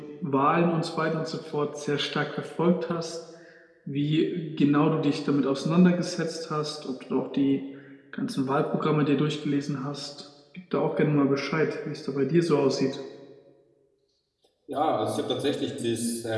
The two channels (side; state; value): both; identical; correlation 1.00